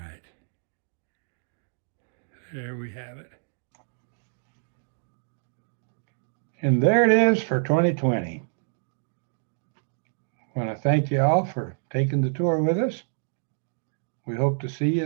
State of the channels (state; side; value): silent; left; digital silence